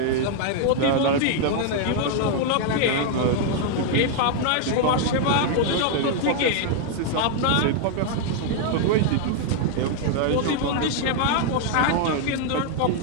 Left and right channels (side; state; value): both; different; correlation 0.00